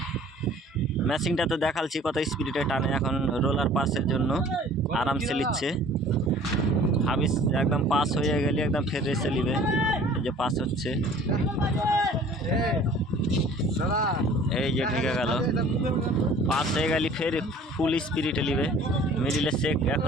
ম্যাচিংটা তো দেখালছি কত স্পিডে টানে। এখন রোলার পাসের জন্য আরামসে নিচ্ছে। হাবিস একদম পাস হয়ে গেলে একদম ফের রেসে নিবে। এই যে পাস হচ্ছে, এই যে ঢেকে গেল। পাস হয়ে গেলে ফের ফুল স্পিরিটে নিবে। মিডিলে চেক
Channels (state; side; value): normal; both; correlation 0.50